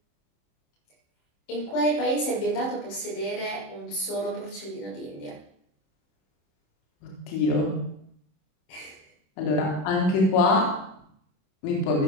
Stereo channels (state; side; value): late; right; 26 ms